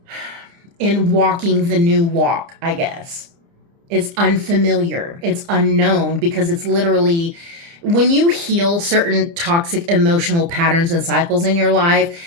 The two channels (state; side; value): late; left; 30 ms